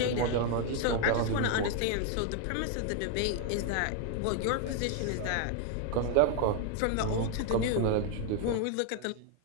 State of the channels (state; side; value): different; both; correlation 0.01